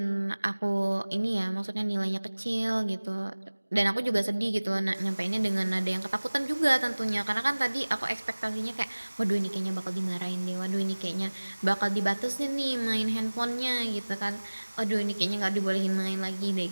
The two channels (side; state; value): both; inverted; correlation -1.00